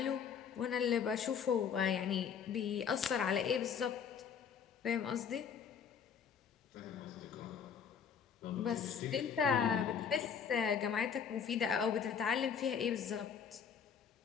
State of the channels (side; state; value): right; quieter; 7.2 dB